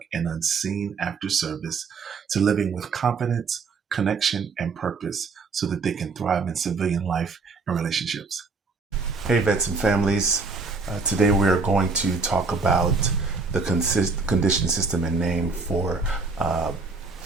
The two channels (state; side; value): quieter; left; 4.3 dB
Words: and unseen after service to living with confidence, connection, and purpose so that they can thrive in civilian life and relationships. Hey, vets and families. Today we are going to talk about the condition system and name for